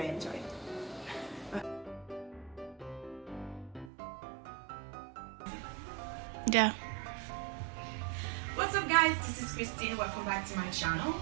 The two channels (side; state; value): left; drops out; at 3.9 s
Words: enjoy. Yeah. What's up guys, this is Christine, welcome back to my channel,